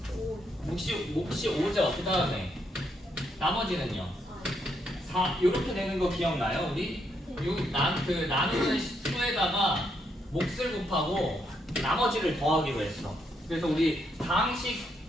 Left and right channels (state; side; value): normal; both; correlation 0.77